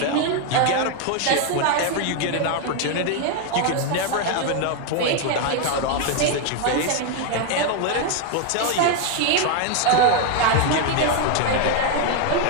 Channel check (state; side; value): different; both; correlation 0.01